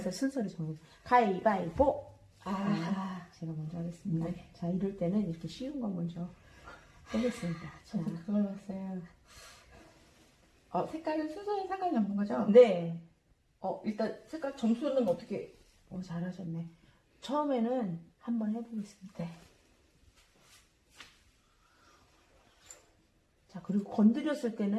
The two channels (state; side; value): identical; both; correlation 1.00